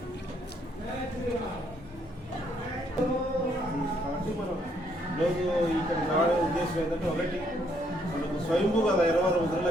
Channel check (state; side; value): normal; both; correlation 0.70